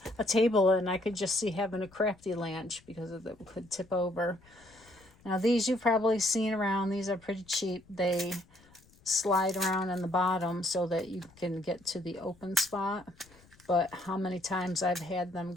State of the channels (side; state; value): left; noise; rumble, 28 dB below the sound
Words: a table, and I could just see having a crafty lunch because it could tip over. Now, these you've probably seen around. These are pretty cheap. They slide around in the bottom so that you can get to the open spot. But how many times I've had them